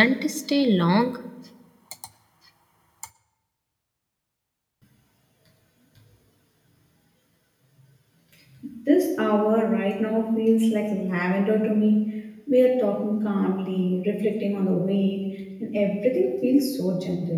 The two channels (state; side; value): identical; both; correlation 1.00